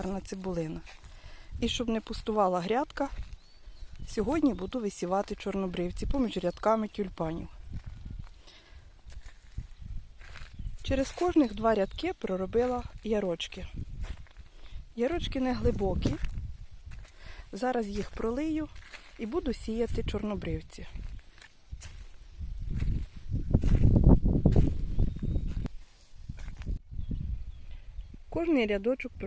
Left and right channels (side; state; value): both; identical; correlation 1.00